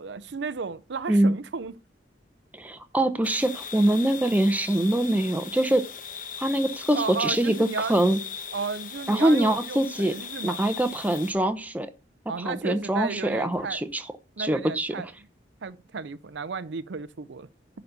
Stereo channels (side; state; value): both; normal; correlation 0.75